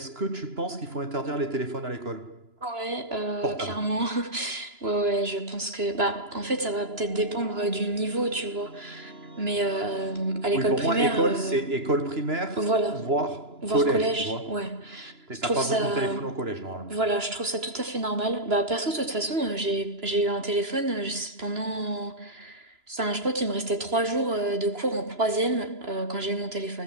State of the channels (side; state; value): left; late; 2.9 ms